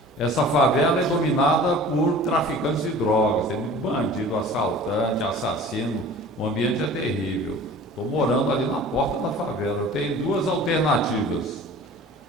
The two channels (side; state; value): both; normal; correlation 0.43